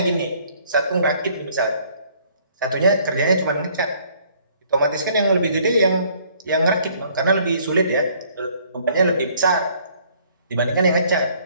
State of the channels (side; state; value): both; inverted; correlation -0.61